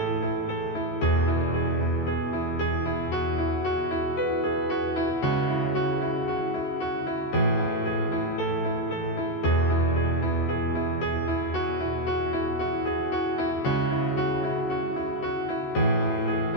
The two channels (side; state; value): right; late; 14 ms